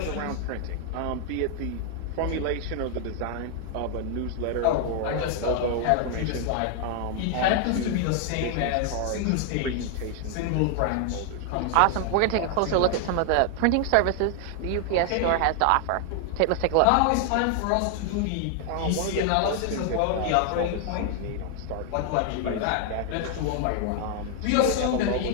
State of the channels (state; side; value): different; both; correlation 0.00